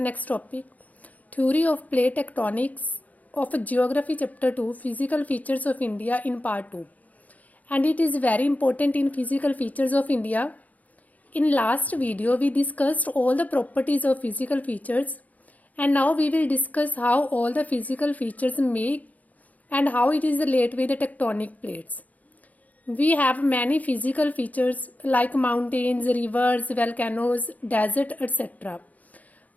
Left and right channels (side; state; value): right; late; 0.076 ms